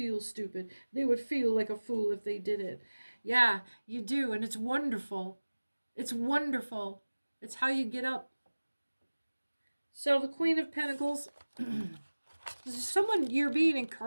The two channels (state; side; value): inverted; both; correlation -1.00